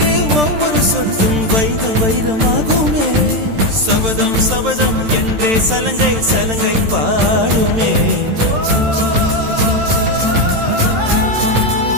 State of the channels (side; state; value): left; late; 13 ms